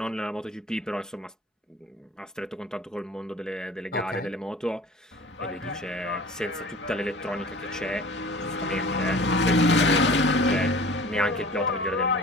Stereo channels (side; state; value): both; normal; correlation 0.43